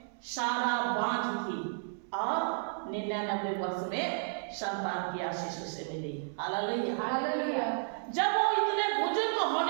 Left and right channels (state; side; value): silent; left; 56 dB below the other